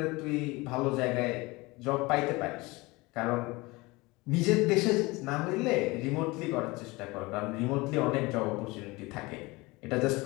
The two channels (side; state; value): right; quieter; 23.1 dB